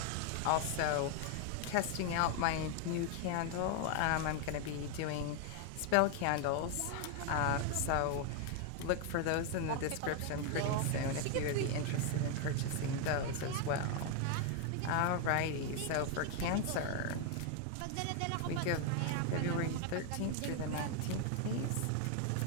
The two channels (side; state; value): both; different; correlation 0.01